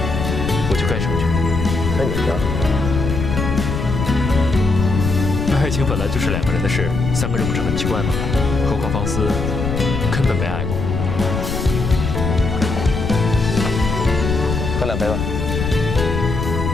我就该成全。那你呢？爱情本来就是两个人的事，三个人不是很奇怪吗？何况方思根本没爱过。喝两杯吧。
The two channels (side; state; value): left; noise; rumble, 3 dB below the sound